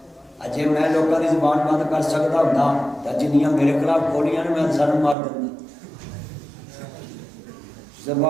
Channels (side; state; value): left; drops out; at 5.2 s